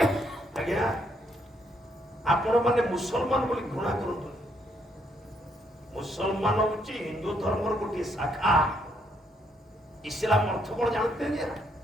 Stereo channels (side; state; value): both; normal; correlation 0.73